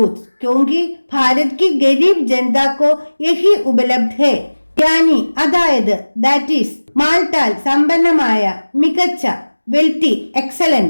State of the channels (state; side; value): inverted; both; correlation -1.00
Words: क्योंकि भारत की गरीब जनता को यही उपलब्ध है. यानी അതായത് ദാറ്റ് ഈസ് മാൽട്ടാൽ സമ്പന്നമായ, മികച്ച വെൽത്തി